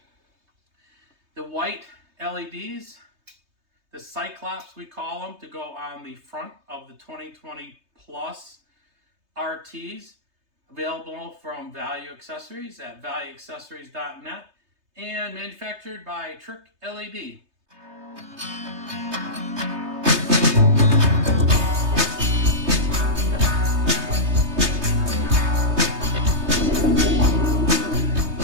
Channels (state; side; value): late; left; 3.2 ms